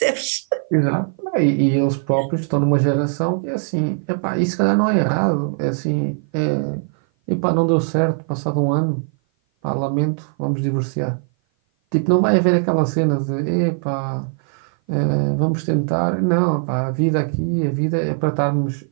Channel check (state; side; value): silent; left; 56 dB below the other